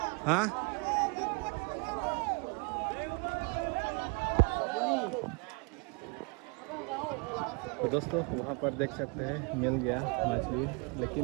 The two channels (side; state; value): left; quieter; 31.9 dB